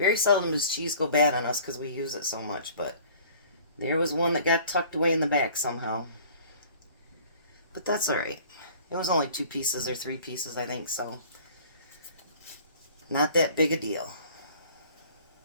seldom does cheese go bad on us because we use it so much, but there was one that got tucked away in the back somehow. But that's alright. It was only 2 pieces or 3 pieces, I think, so not that big a deal.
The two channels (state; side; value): inverted; both; correlation -0.50